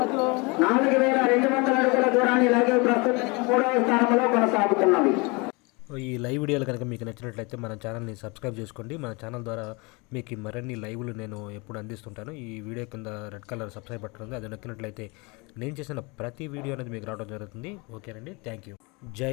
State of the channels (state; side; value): quieter; right; 27.9 dB